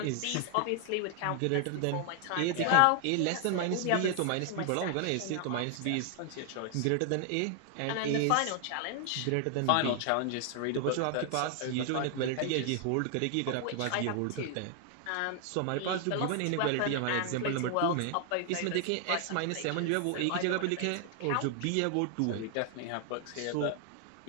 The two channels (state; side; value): different; both; correlation 0.00